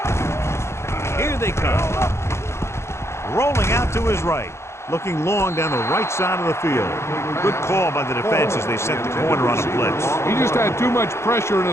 Here they come. Rolling out to his right. Looking long down the right side of the field. Good call by the defense as they sent the corner on a blitz. He just had too much pressure in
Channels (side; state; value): right; late; 0.13 ms